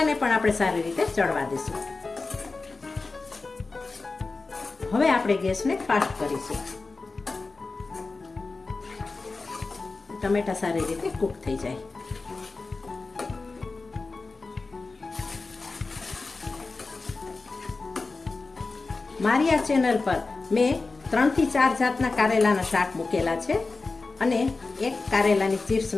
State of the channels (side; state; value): right; quieter; 3.8 dB